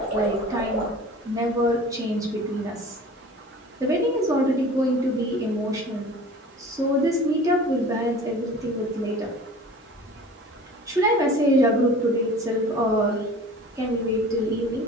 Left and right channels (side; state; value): both; normal; correlation 0.42